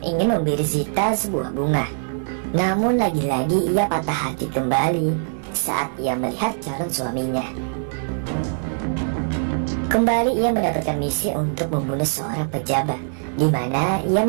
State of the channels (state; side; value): silent; left; digital silence